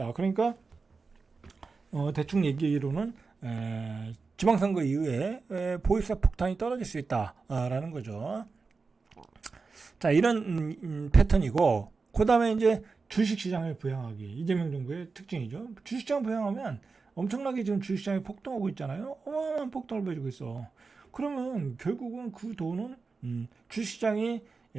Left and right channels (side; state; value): left; quieter; 4.4 dB